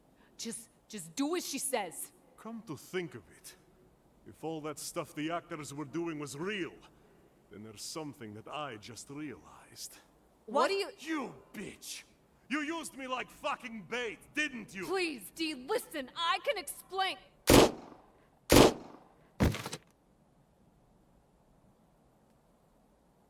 just do as she says. Come to think of it, if all that stuff the actors were doing was real, then there's something that I just realized. What do you— You bitch! You used me like fucking bait, didn't you? Please, D, listen, I can explain.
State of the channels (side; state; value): both; identical; correlation 1.00